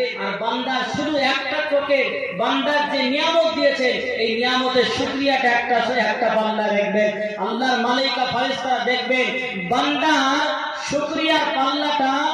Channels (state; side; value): identical; both; correlation 1.00